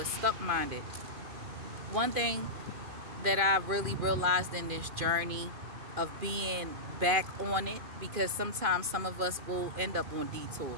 stuck-minded. One thing that I really realized in this journey of being back on it, because sometimes some of us will end up on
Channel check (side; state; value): left; late; 2.4 ms